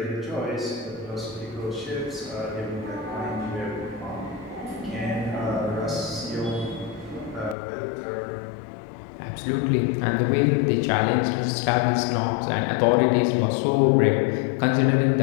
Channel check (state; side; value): drops out; right; at 7.6 s